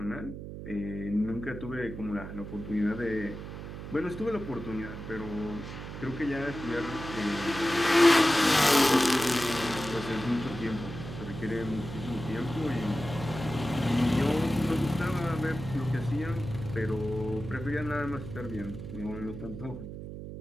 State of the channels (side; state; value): right; noise; hum, 9 dB below the sound